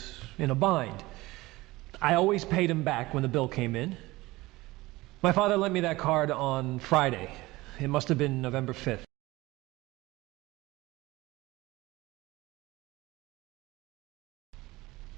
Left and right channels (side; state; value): left; quieter; 19.9 dB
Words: in a bind. I always paid him back when the bill came in. My father lent me that card on Friday. It must have been November 5th.